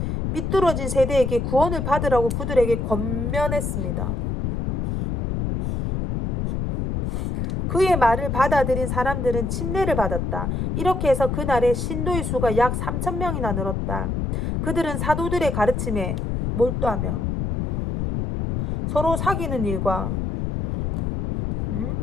삐뚤어진 세대에게 구원을 받으라고 그들에게 권면했습니다. 그의 말을 받아들인 사람들은 침례를 받았다. 이렇게 해서 그날에 신도의 수가 약 3,000명이나 늘었다. 그들은 사도들의 가르침에 몰두하며 서로 사귀는 일과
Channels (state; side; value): noise; left; rumble, 1 dB below the sound